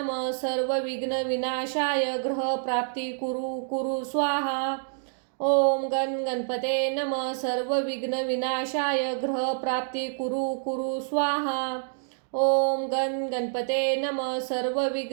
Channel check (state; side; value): silent; left; digital silence